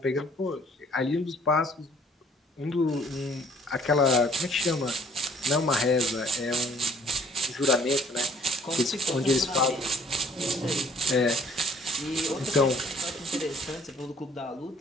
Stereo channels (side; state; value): both; normal; correlation 0.59